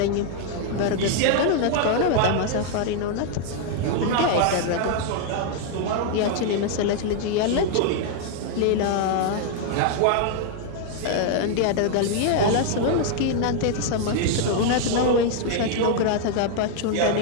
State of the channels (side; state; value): both; different; correlation 0.00